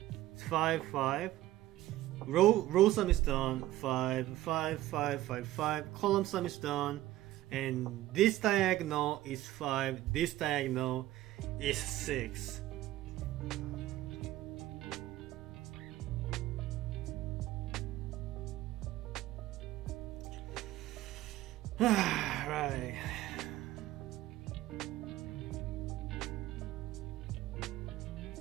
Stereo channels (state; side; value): quieter; left; 15.4 dB